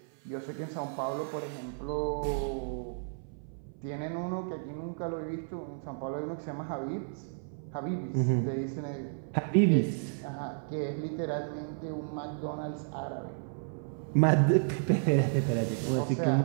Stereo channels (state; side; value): silent; left; 56 dB below the other